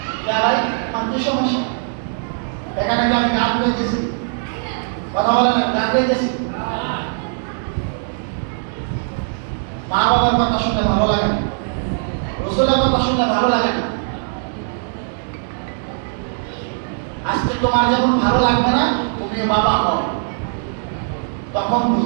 এরাই কি সমস্যা? এখানে আমি গান গাইতেছি, কথা বলে না, গান গাইতেছি। মা বাবার কথা শুনে ভালো লাগে না, রাসূলের কথা শুনে ভালো লাগে না। আজকে তোমার যখন ভালো লাগবে না, তুমি বাবা হও, তখন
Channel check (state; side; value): silent; left; digital silence